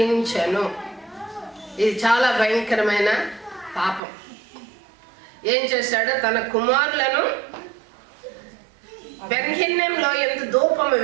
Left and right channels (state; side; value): drops out; left; at 4.0 s